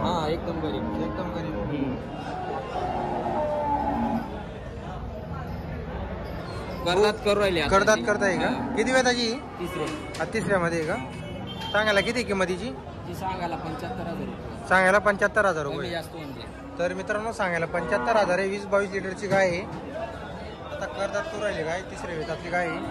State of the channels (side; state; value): both; identical; correlation 1.00